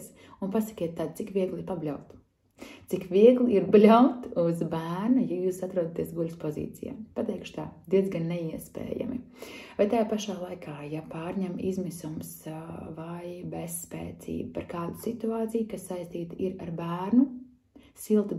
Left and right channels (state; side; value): identical; both; correlation 1.00